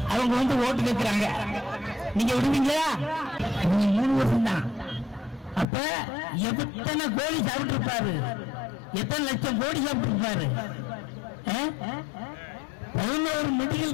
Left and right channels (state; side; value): drops out; right; at 5.7 s